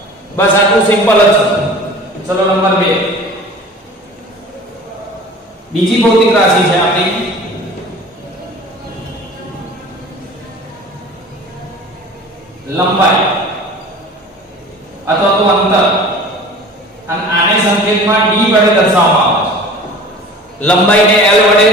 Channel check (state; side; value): normal; both; correlation 0.42